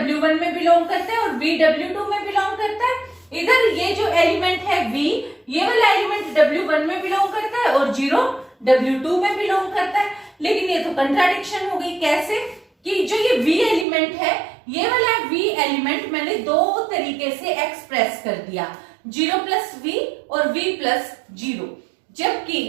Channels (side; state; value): left; drops out; at 13.9 s